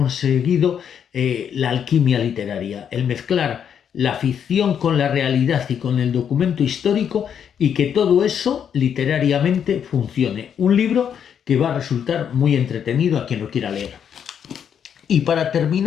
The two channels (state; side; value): quieter; right; 8.2 dB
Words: la alquimia literaria, el mezclar la ficción con la realidad y con el documento histórico y que todo eso literariamente funcione. Un libro que va a resultar muy entretenido a quien lo quiera leer. Y para